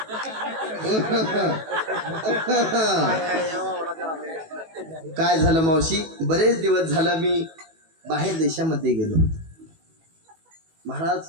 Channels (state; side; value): late; left; 18 ms